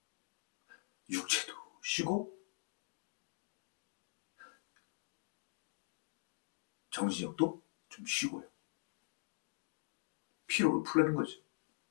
육체도 쉬고 정신력도 좀 쉬고요. 피로를 풀라는 거죠.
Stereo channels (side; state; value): right; silent; digital silence